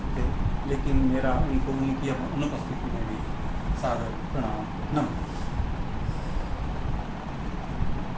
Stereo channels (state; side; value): identical; both; correlation 1.00